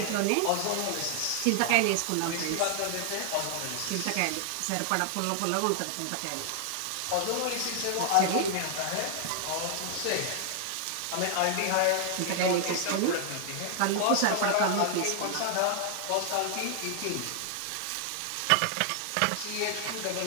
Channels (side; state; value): both; different; correlation 0.00